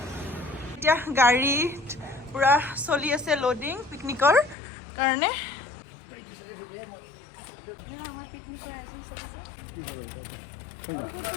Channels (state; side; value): drops out; right; at 4.5 s